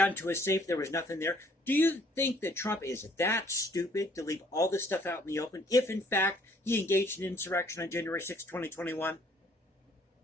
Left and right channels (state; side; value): normal; both; correlation 0.62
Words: into his safe, there was nothing there. Do you think that Trump is that stupid to leave all this stuff out in the open if, in fact, he engaged in insurrection on January 6, 2021?